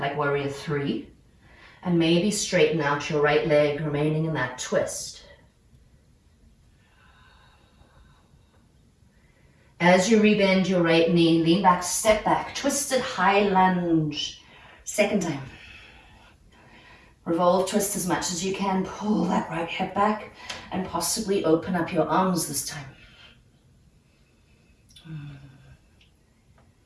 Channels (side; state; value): both; identical; correlation 1.00